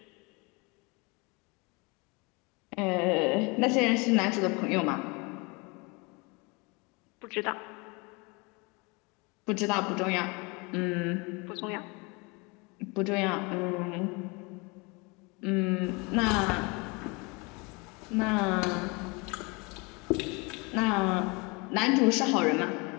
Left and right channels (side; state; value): right; quieter; 28.4 dB